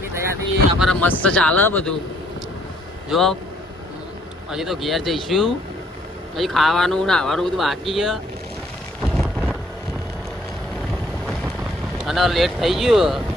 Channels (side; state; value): both; normal; correlation 0.65